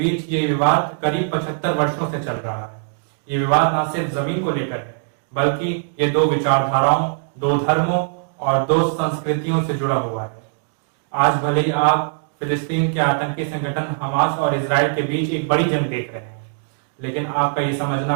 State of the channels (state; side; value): silent; left; digital silence